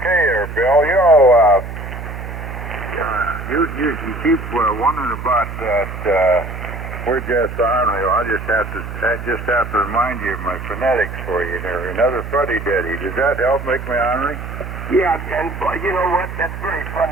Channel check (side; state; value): right; noise; hum, 8 dB below the sound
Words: there, Bill. You keep wondering about that We're-Jets Army. I just have to remind you of my phonetics for you there. Another fuddy-duddy. Does that help make me ornery? Yeah, and you know what? That's very